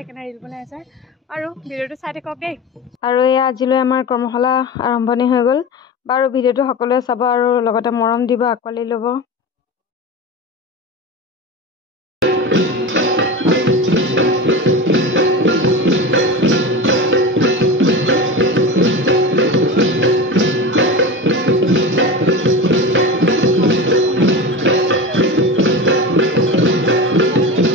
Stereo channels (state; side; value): normal; both; correlation 0.26